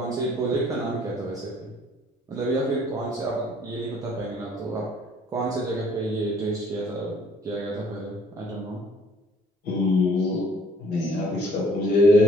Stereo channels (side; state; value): both; normal; correlation 0.59